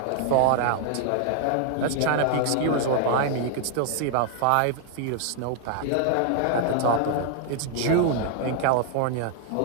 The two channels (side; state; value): both; different; correlation 0.00